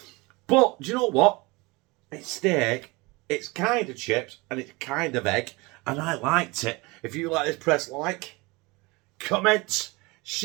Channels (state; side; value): quieter; left; 24.7 dB